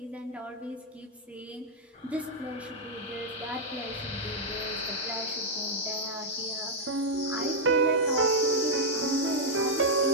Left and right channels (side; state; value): both; normal; correlation -0.03